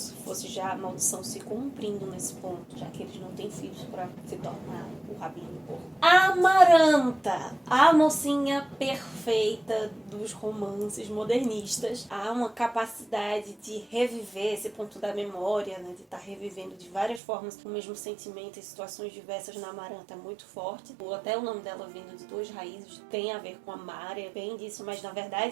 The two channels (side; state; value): left; drops out; at 17.2 s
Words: fosse já a maldição se cumprindo nesse ponto, já que eles não têm filhos para se tornar o rabino porco. Amaranta, a mocinha perfeita dos romances modernistas. Há uma capacidade de reviver esse ponto da memória, né, de estar revivendo de várias formas o mesmo sentimento em situações diversas na Amaranta é muito forte. Até o nome dela vindo de duas raízes tem a ver com amar, é bem disso, mas na